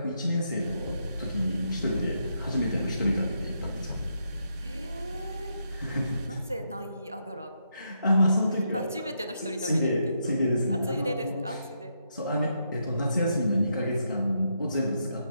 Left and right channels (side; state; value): both; inverted; correlation -0.80